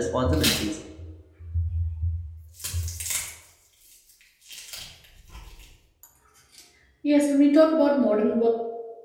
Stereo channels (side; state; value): both; identical; correlation 1.00